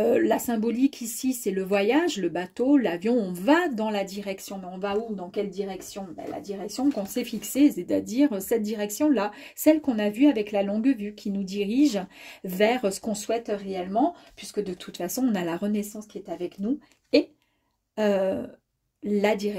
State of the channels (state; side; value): identical; both; correlation 1.00